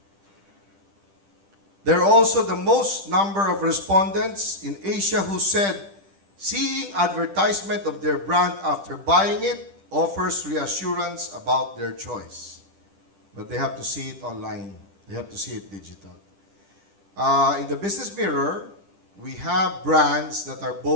There are also the most number of respondents in Asia who said seeing advertisement of their brand after buying it offers reassurance about their choice. But they have to see it online. They have to see it digital. In the Business Mirror, we have brands that are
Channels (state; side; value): late; left; 10 ms